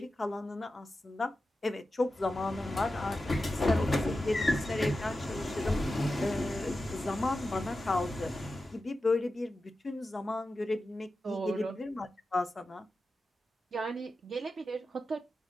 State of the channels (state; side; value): normal; both; correlation 0.92